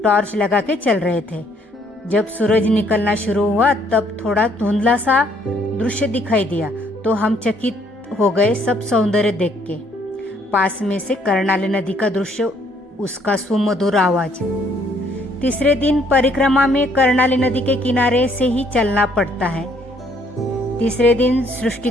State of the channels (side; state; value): both; normal; correlation 0.66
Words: टॉर्च लगा के चल रहे थे। जब सूरज निकलना शुरू हुआ तब थोड़ा धुंधला सा दृश्य दिखाई दिया, तो हम चकित हो गए सब सौंदर्य देख के। पास में से कर्णाली नदी का दृश्य, उसका सुमधुर आवाज। तीसरे दिन परिक्रमा में कर्णाली नदी के किनारे से ही चलना पड़ता है। तीसरे दिन सृष्टि